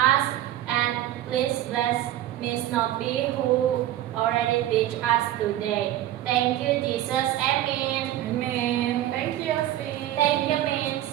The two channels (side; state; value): left; quieter; 13.3 dB